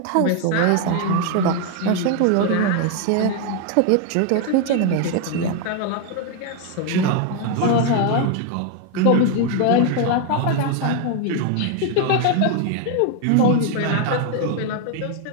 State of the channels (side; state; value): both; different; correlation 0.01